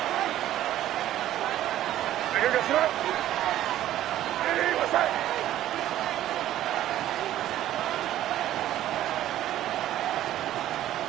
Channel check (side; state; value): left; quieter; 13.0 dB